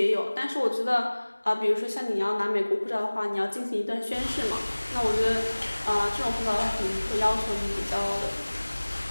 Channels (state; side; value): inverted; both; correlation -1.00